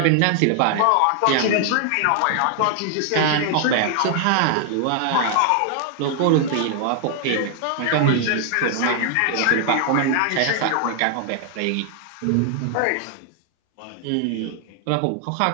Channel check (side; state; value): both; different; correlation 0.00